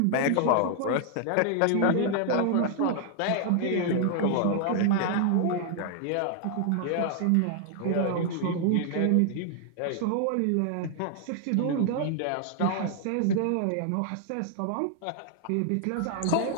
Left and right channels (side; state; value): both; different; correlation 0.00